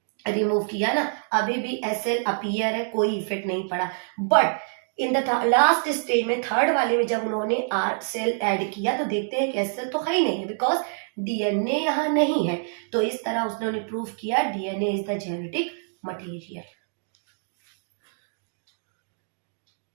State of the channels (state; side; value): silent; left; 61 dB below the other